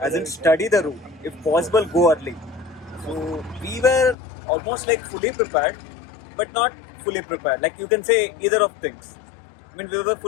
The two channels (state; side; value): drops out; right; at 4.2 s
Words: in study the route. If possible, go early. So we were almost like fully prepared, but not fully prepared. Like you can say either of things. I mean, we were